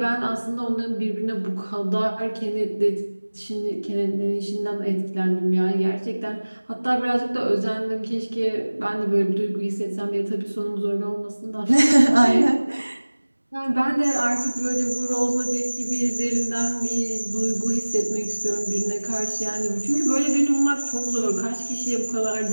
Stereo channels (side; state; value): both; inverted; correlation -1.00